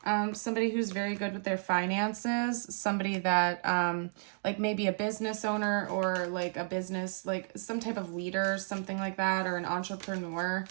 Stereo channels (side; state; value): left; silent; 56 dB below the other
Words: somebody who's very good with their finances, somebody that like maybe a business owner, or like a business, like some type of leader, something like that, or an entrepreneur.